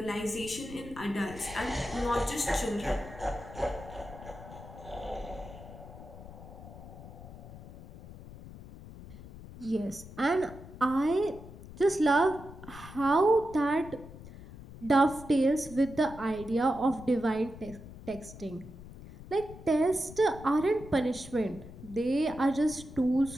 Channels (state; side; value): noise; left; rumble, 15 dB below the sound